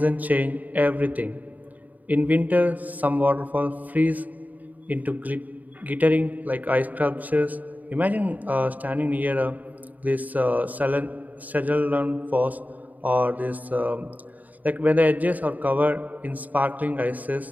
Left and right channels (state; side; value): late; left; 0.078 ms